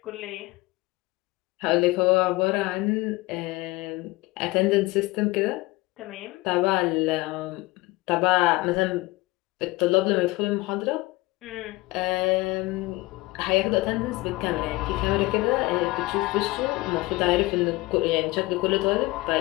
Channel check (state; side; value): quieter; right; 21.3 dB